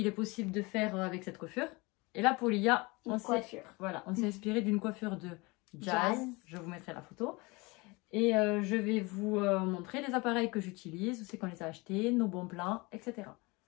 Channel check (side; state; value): right; quieter; 25.3 dB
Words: est possible de faire avec cette coiffure. Et là pour Lia, on s'est inspiré d'une coiffure de Jazz. Je vous mettrai la photo. Et je vais vous montrer les appareils que j'utilise, où c'est qu'on les a achetés, nos bons plans, etc.